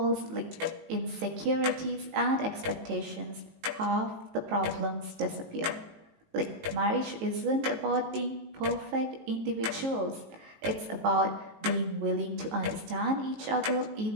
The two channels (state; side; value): late; left; 19 ms